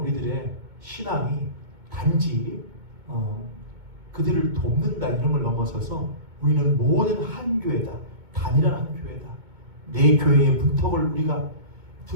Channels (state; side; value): late; left; 2.2 ms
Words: 신앙이 단지 그들을 돕는다 이런 걸 넘어서서 우리는 모든 한 교회다, 단일한 한 교회다. 내 교회의 문턱을 우리가